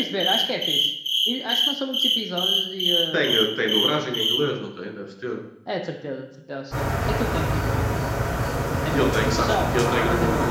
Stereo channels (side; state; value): both; identical; correlation 1.00